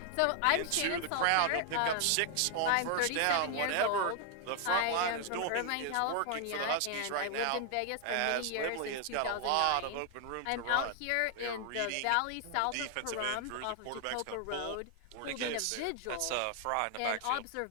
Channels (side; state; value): both; different; correlation 0.00